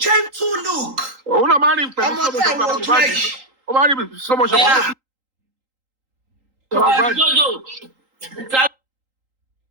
gentle look. òun náà máa ń rí pẹ̀lú sọmọṣọpọ̀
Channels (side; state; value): left; late; 3.8 ms